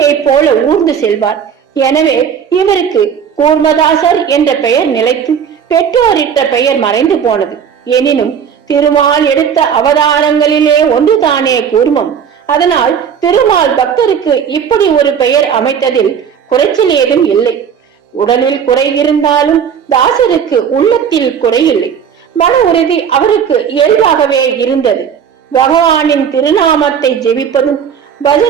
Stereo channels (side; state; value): left; quieter; 7.7 dB